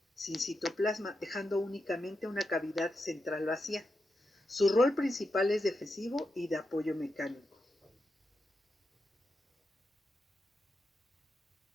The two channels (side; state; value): both; normal; correlation 0.86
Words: sin citoplasma, dejando únicamente una cavidad central vacía. Su rol principal es defensivo y de apoyo mecánico.